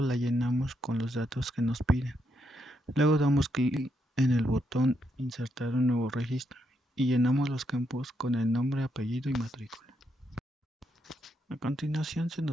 la llenamos con los datos que nos piden. Luego damos clic en el botón insertar un nuevo registro y llenamos los campos con el nombre, apellido y matrícula. A continuación se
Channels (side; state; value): both; normal; correlation 0.79